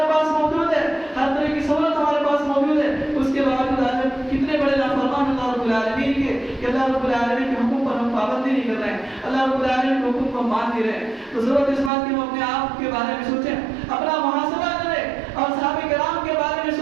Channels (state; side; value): drops out; left; at 11.9 s